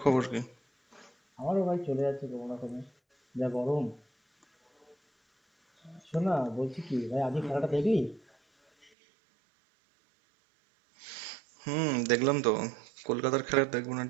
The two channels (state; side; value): drops out; left; at 8.9 s